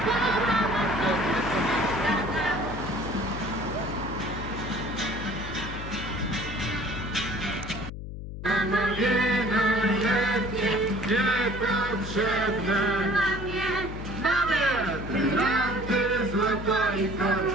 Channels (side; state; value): left; noise; hum, 9 dB below the sound